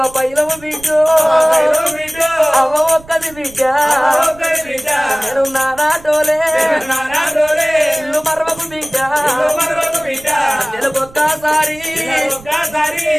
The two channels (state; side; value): noise; right; rumble, 22 dB below the sound